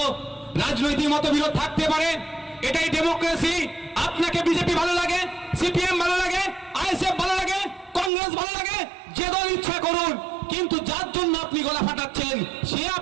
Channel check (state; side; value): drops out; left; at 8.1 s